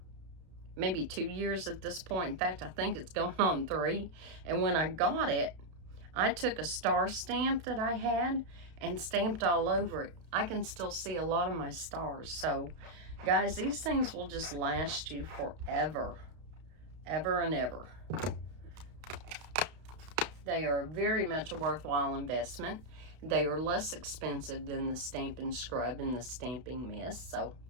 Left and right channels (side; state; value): left; late; 32 ms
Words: maybe 2 years at this point. In fact, I think it's going on 3. And when I got it, I took a star stamp that I had and stamped all over it. I can still see a lot of my stars. So, guys, these things will just last you forever. Ever and ever. They are very much a worthwhile investment. They are less expensive than the Stampin' Scrub and the Stamping Mist, so